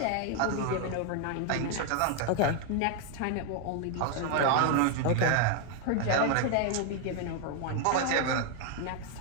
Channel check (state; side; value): different; both; correlation 0.00